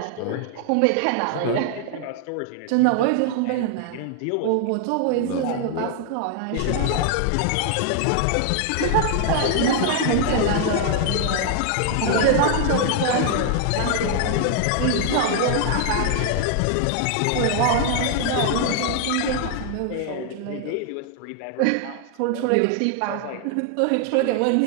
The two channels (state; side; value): different; both; correlation 0.00